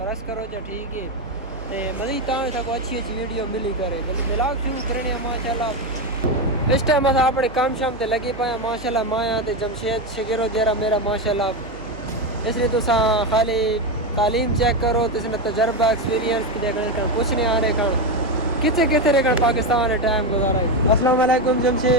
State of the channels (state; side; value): noise; right; hum, 17 dB below the sound